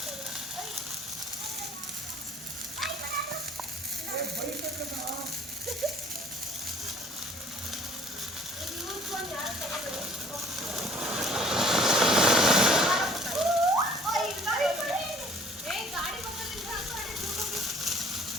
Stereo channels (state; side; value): normal; both; correlation 0.54